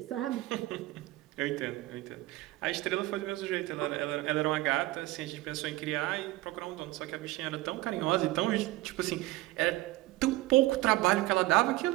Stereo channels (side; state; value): left; quieter; 18.5 dB